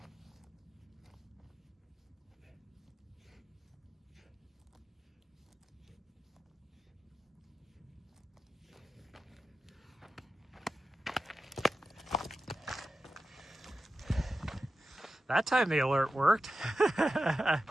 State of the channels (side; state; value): both; normal; correlation 0.92